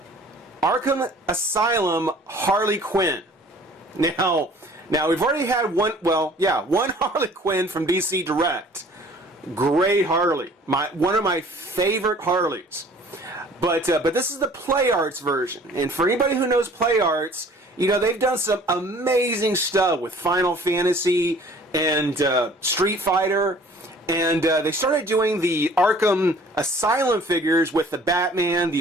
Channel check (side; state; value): both; normal; correlation 0.51